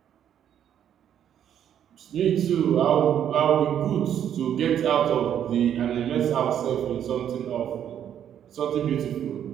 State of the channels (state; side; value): quieter; left; 9.7 dB